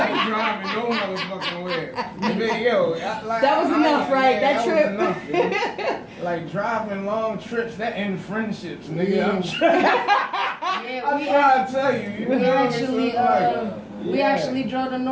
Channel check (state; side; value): identical; both; correlation 1.00